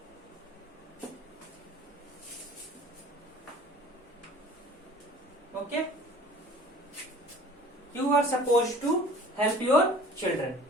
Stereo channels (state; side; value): normal; both; correlation 0.47